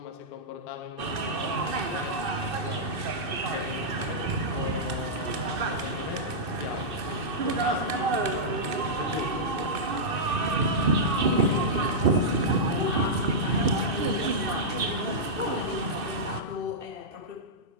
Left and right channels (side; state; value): left; late; 2.6 ms